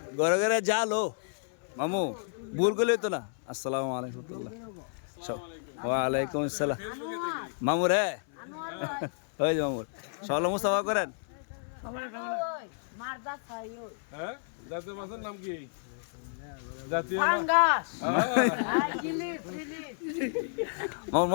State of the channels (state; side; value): silent; right; 57 dB below the other